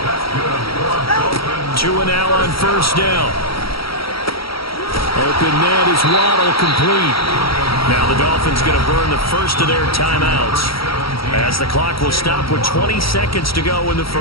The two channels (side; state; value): right; late; 0.75 ms